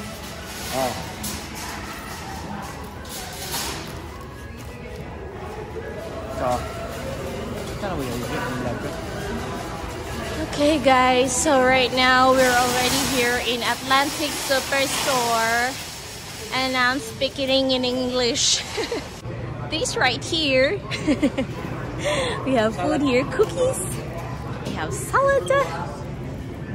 Oh. Okay guys, so right now we're already here in Atlantic Superstore and I'm speaking in English. This right here, we have food here, cookies, we have salad.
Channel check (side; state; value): both; identical; correlation 1.00